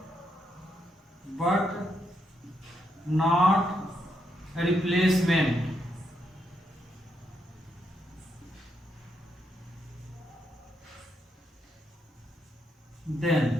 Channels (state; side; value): normal; both; correlation 0.79